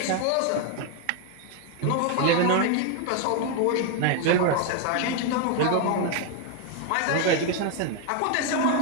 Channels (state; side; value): different; both; correlation 0.00